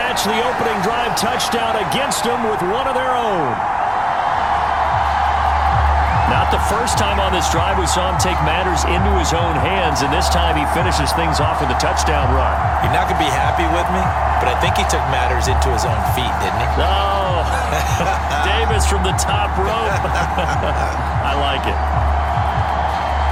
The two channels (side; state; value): both; identical; correlation 1.00